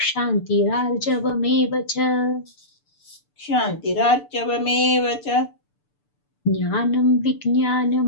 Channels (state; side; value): late; right; 6.9 ms